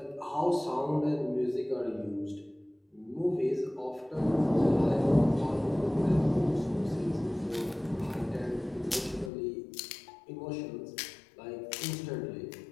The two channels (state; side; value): drops out; right; at 9.3 s